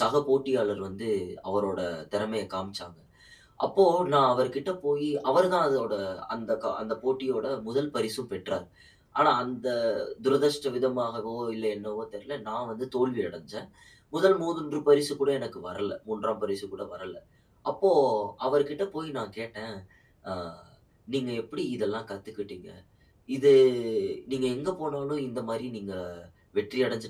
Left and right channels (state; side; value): identical; both; correlation 1.00